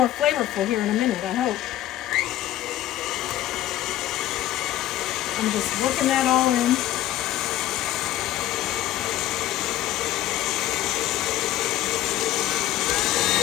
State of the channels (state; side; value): quieter; right; 13.8 dB